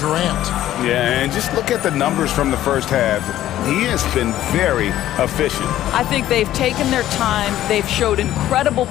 Yeah, and just look at the numbers from the first half. He has been very efficient. I think they've taken their time. They've showed incredible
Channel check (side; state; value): right; quieter; 13.2 dB